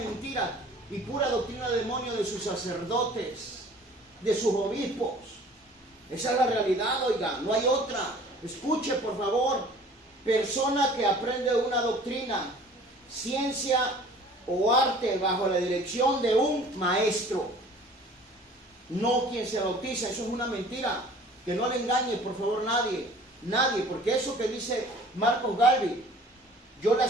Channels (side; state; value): both; normal; correlation 0.49